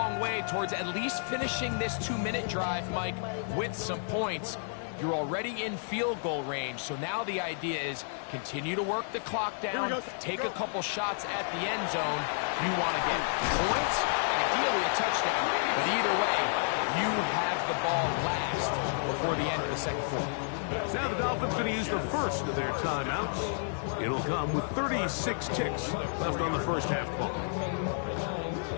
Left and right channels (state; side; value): silent; right; digital silence